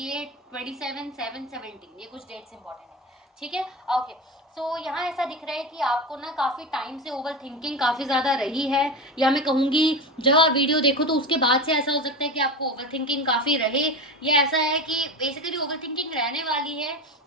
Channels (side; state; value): both; normal; correlation 0.23